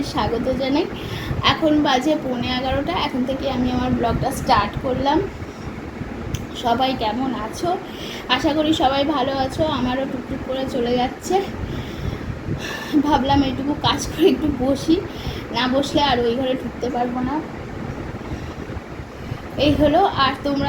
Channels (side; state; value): both; identical; correlation 1.00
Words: স্বাগত জানাই। এখন বাজে 11:15। এখন থেকে আমি আমার ব্লগটা স্টার্ট করলাম। সবাই কেমন আছো? আশা করি সবাই ভালো আছো। আমারও টুকটুক করে চলে যাচ্ছে। ভাবলাম এইটুকু কাজ করে একটু বসি, না বসলে আর ওই ঘরে ঢুকতে পারবো না। এই হলো। আর তোমরা